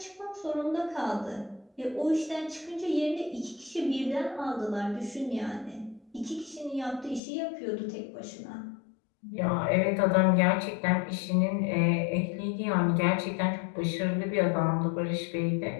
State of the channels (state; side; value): drops out; right; at 7.2 s